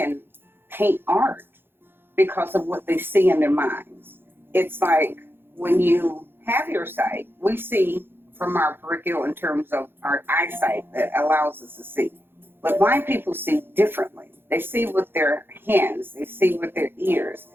paint art because of what they see in their minds. It's like when you have your sight, we see from our peripheral in terms of our eyesight that allows us to see. But blind people see differently. They see with their hands, they see with their ears.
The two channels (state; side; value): late; left; 0.10 ms